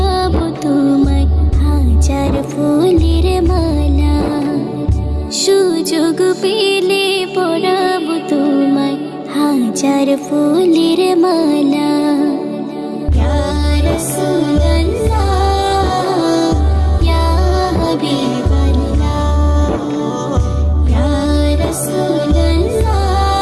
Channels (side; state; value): both; identical; correlation 1.00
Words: তোমায় হাজার ফুলের মালা। সুযোগ পেলে পরাবো তোমায় হাজার ফুলের মালা। ইয়া রাসূলুল্লাহ ইয়া হাবিবাল্লাহ ইয়া রাসূলুল্লাহ